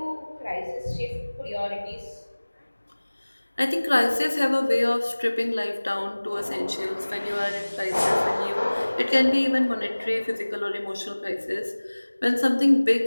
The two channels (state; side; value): inverted; both; correlation -1.00